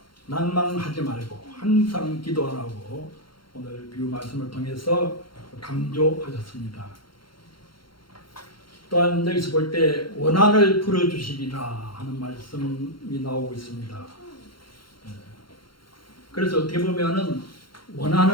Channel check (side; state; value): right; late; 0.73 ms